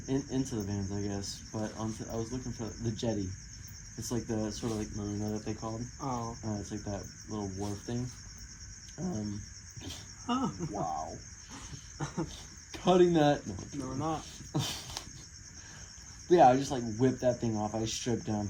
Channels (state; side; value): identical; both; correlation 1.00